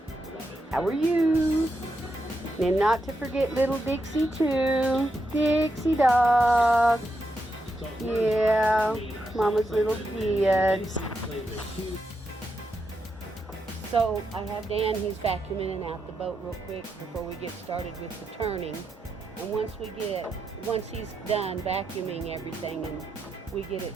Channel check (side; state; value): both; normal; correlation 0.84